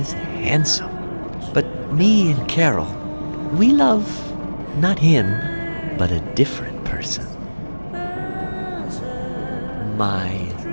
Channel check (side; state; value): both; inverted; correlation -1.00